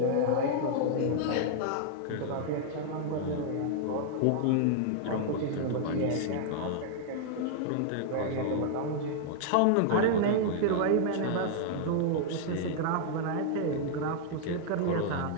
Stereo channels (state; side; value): different; both; correlation -0.01